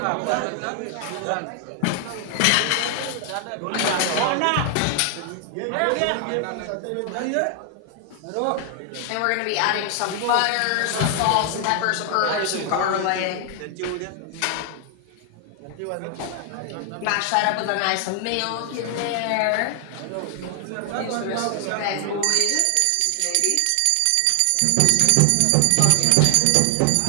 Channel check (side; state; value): both; different; correlation 0.00